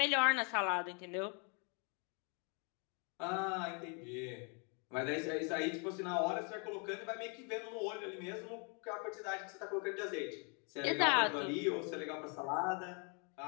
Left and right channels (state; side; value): quieter; right; 36.0 dB